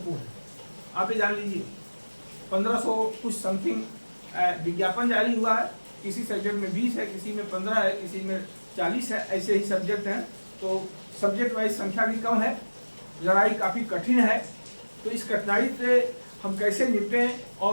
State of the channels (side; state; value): both; inverted; correlation -1.00